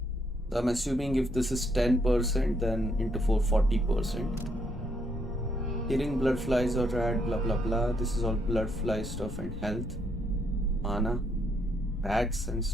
So I'm assuming if this is 10%, then into 4 40%. Killing blood flies or rad, blah blah blah. This is all blood fly stuff and health, mana, rats and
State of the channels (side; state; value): both; normal; correlation 0.73